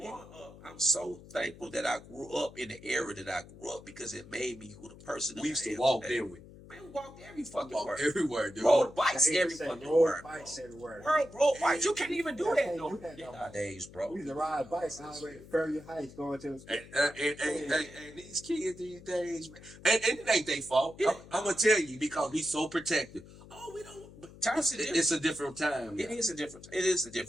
up. I'm so thankful that I grew up in the era that I grew up because it made me who the person that We used I to am walk, today. didn't we? Man, we walked every fucking Walk word. everywhere, dude. Rode bikes every Say fucking road word. bikes everywhere. Rode bikes. You can't even do Yeah, that can't no do that no more. nowadays, bro. We used to ride bikes all the way to Ferry Heights going to the school. And these kids these days, man, and it ain't their fault. Yeah. I'm gonna tell you because we so protective. Oh, we don't. But Times are different. it's a different time. It now. is a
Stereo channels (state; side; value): noise; left; hum, 19 dB below the sound